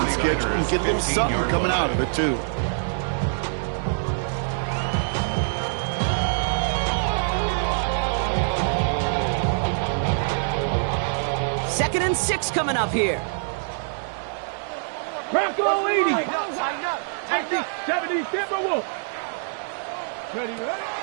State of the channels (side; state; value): left; silent; digital silence